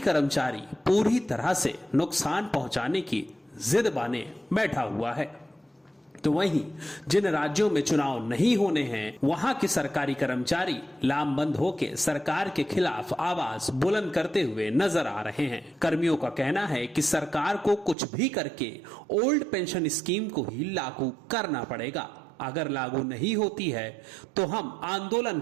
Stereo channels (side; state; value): left; drops out; at 17.9 s